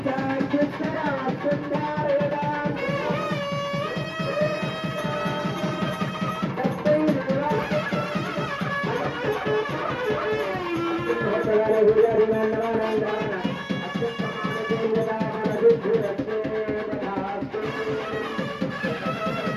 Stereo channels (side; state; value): both; identical; correlation 1.00